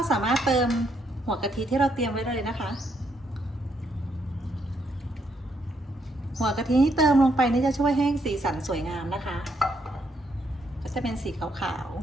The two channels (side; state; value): both; normal; correlation 0.75